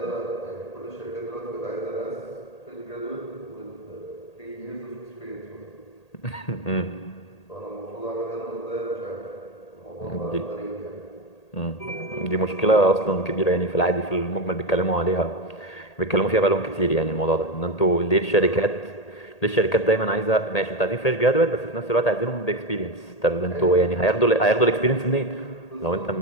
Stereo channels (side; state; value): right; late; 1.8 ms